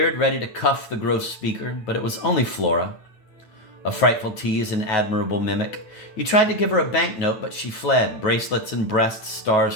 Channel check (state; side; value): late; right; 8.8 ms